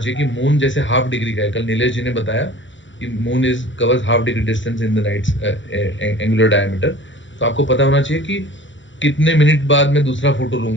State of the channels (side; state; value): right; late; 0.54 ms